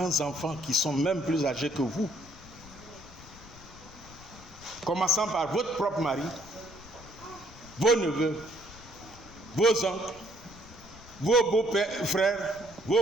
enfants qui sont même plus âgés que vous. Commençant par votre propre mari, vos neveux, vos oncles, vos beaux-frères,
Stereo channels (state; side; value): noise; left; rumble, 20 dB below the sound